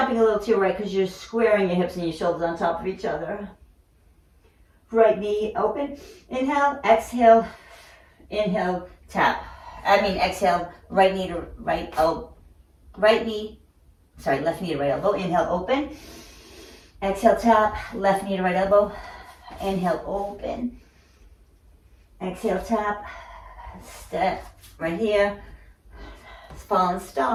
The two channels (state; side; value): identical; both; correlation 1.00